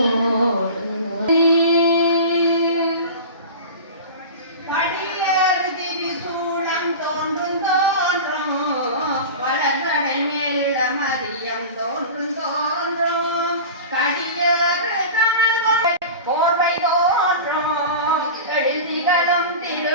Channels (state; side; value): inverted; both; correlation -0.32